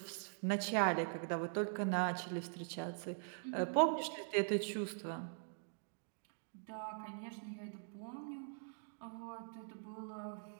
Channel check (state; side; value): silent; left; digital silence